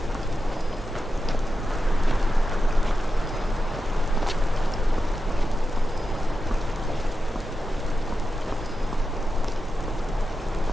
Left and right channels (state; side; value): normal; both; correlation 0.90